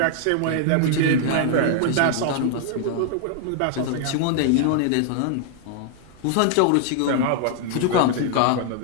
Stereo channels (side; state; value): both; different; correlation 0.00